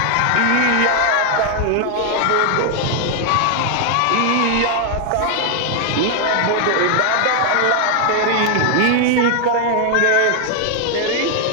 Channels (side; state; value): both; different; correlation 0.00